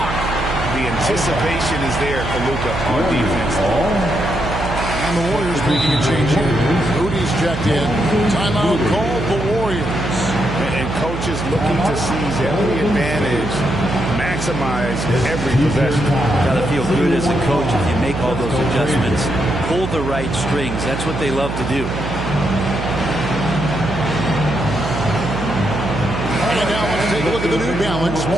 The anticipation is there for Luka on defense. And the Warriors making a change here. Moody's checked in. Timeout called the Warriors. And coaches looking to seize every advantage, maximize every possession. Got to feel good as a coach if you make all those adjustments. Pull the right strings. That's what they love to do. And now let's take a look at the New Balance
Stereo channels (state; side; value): noise; right; hum, 5 dB below the sound